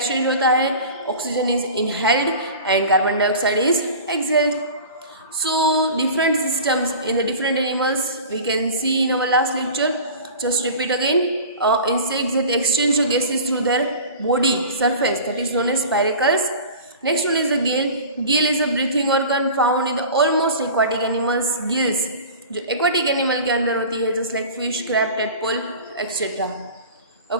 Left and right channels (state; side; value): inverted; both; correlation -0.38